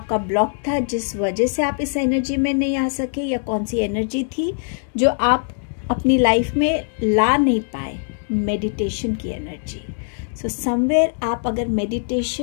ब्लॉक था जिस वजह से आप इस एनर्जी में नहीं आ सके, या कौन सी एनर्जी थी जो आप अपनी लाइफ में ला नहीं पाए? मेडिटेशन की एनर्जी। सो समवेयर आप अगर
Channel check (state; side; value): silent; right; digital silence